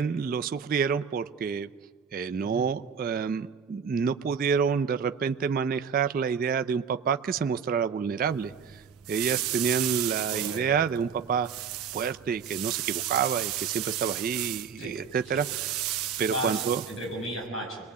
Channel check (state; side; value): quieter; left; 6.5 dB